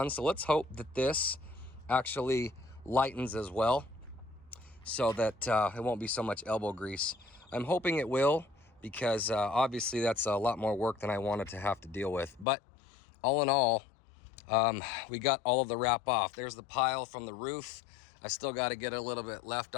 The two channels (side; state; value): right; drops out; at 12.5 s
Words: So let's hope that this actually lightens as well, so that it won't be so much elbow grease. I'm hoping it will, because obviously that's a lot more work than I wanted to have to deal with. But all in all, we got all of the wrap off. There's the pile from the roof. I still got to get a little bit left